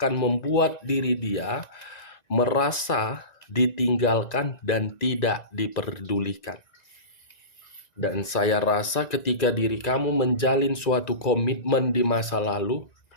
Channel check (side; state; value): right; late; 1.9 ms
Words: membuat diri dia merasa ditinggalkan dan tidak diperdulikan. Dan saya rasa ketika diri kamu menjalin suatu komitmen di masa lalu,